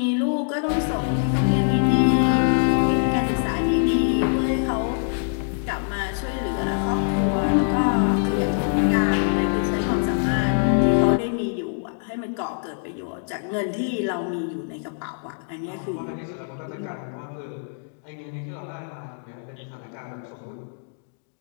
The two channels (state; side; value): silent; right; digital silence